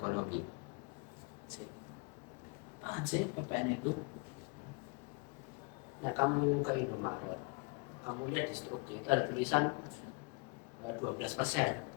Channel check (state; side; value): quieter; right; 32.4 dB